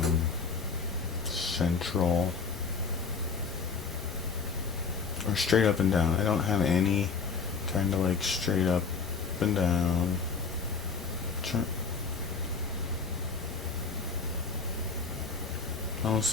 central or straight up and down. I don't have any kind of like straight up and down. Almost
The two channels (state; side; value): quieter; right; 5.1 dB